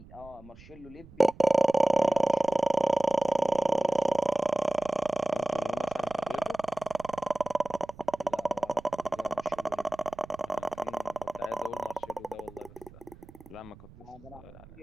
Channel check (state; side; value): noise; right; rumble, 21 dB below the sound